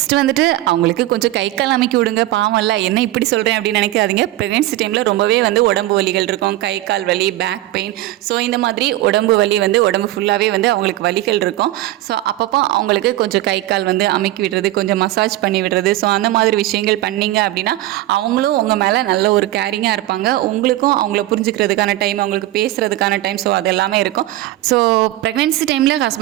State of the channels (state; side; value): quieter; left; 15.9 dB